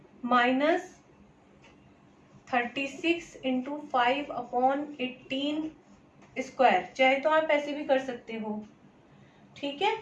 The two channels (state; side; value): identical; both; correlation 1.00